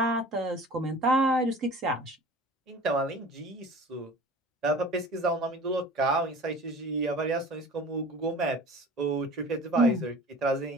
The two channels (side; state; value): both; normal; correlation 0.41